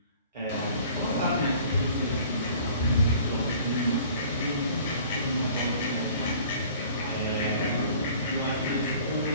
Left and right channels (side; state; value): both; inverted; correlation -0.50